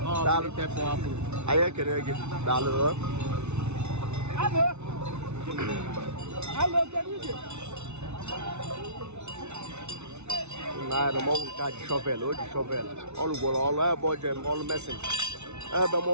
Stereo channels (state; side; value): late; left; 0.81 ms